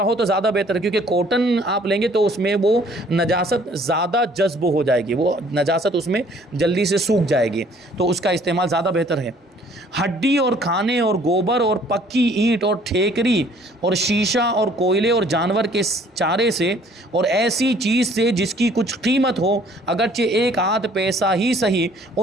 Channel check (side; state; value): both; normal; correlation 0.57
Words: ہو تو زیادہ بہتر ہے، کیونکہ کاٹن آپ لیں گے تو اس میں وہ نجاست زیادہ جذب ہو جائے گی، وہ نجاست اس میں جلدی سے سوکھ جائے گی، تو اس کا استعمال زیادہ بہتر ہے۔ ہڈی اور کھانے اور گوبر اور پکی اینٹ اور ٹھیکری اور شیشہ اور کوئلے اور جانور کے چارے سے اور ایسی چیز سے جس کی کچھ قیمت ہو، اگرچہ 1 آدھ پیسہ ہی صحیح،